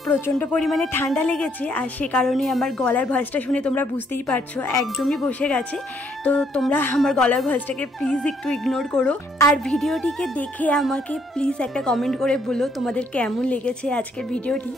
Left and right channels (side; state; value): both; normal; correlation 0.69